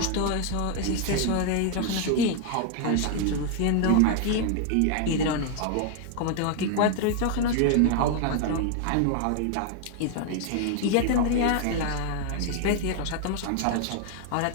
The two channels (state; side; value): different; both; correlation 0.00